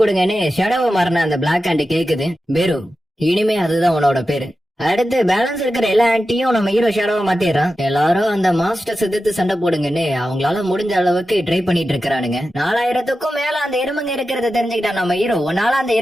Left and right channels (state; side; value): normal; both; correlation 0.92